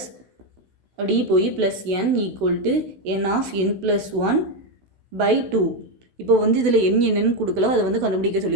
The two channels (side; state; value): left; late; 16 ms